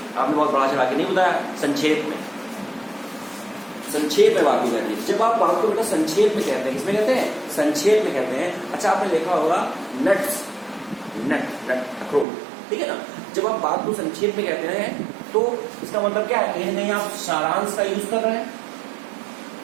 आपने बहुत बड़ा चढ़ा के नहीं बताया, संक्षेप में, संक्षेप में बात को कहते हैं। जब आप बात को बेटा संक्षेप में कहते हैं, किसमें कहते हैं, संक्षेप में कहते हैं। अच्छा आपने देखा होगा नट्स, नट, अखरोट, ठीक है ना। जब आप बात को संक्षेप में कहते हैं तो इसका मतलब क्या है, कहीं ना कहीं आप सारांश का यूज कर रहे हैं।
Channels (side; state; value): left; drops out; at 12.2 s